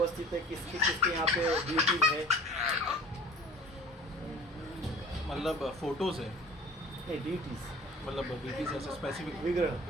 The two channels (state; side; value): normal; both; correlation 0.44